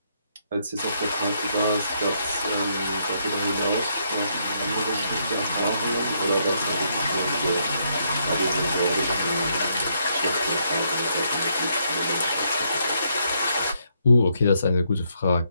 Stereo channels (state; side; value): inverted; both; correlation -0.74